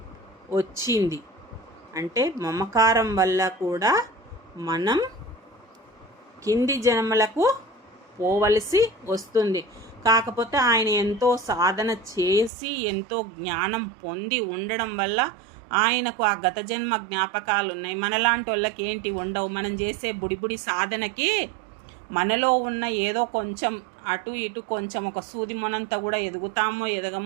వచ్చింది. అంటే మమకారం వల్ల కూడా మనం కింది జన్మలకు పోవలసి వస్తుంది. కాకపోతే ఆయన ఎంతో సాధన చేసి ఎంతో జ్ఞానం పొంది ఉండడం వల్ల ఆయనకు ఆ గత జన్మ జ్ఞాపకాలు ఉన్నాయి. మనలాంటి వాళ్ళకి ఏంటి ఉండవు. మనం చేసే బుడిబుడి సాధనకి మనలో ఉన్న ఏదో కొంచెం అటు ఇటు కొంచెం ఒక సూది మొనంతా కూడా ఎదుగుతామో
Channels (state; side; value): drops out; left; at 12.5 s